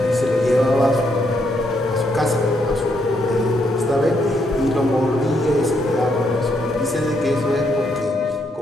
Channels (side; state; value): both; normal; correlation 0.76